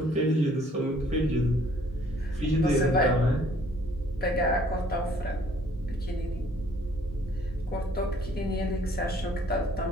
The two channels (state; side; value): normal; both; correlation 0.60